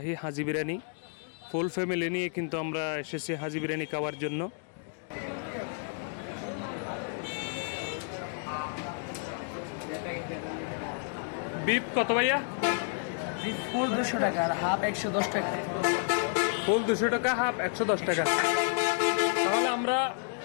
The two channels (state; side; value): silent; right; 55 dB below the other